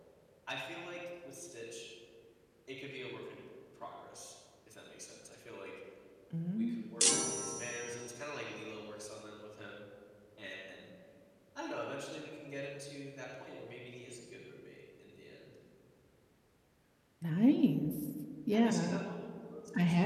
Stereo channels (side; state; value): both; identical; correlation 1.00